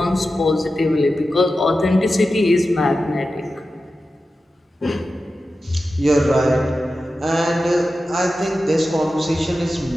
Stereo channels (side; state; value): both; normal; correlation 0.93